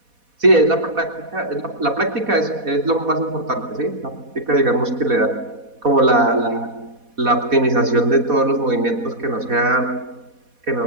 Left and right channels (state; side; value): late; left; 4.1 ms